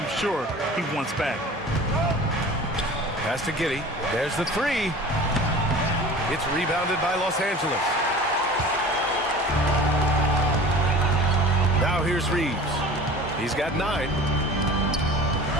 sure he wants back. Pass to Giddey. There's the three. It's rebounded by Los Angeles. Now here's Reeves. He's got 9.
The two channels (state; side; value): normal; both; correlation 0.40